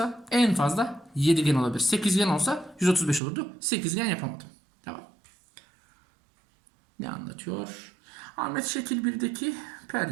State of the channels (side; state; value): left; drops out; at 3.2 s